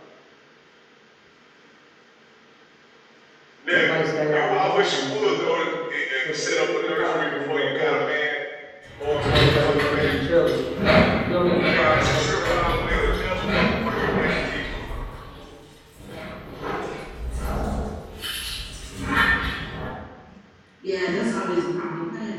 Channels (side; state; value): both; identical; correlation 1.00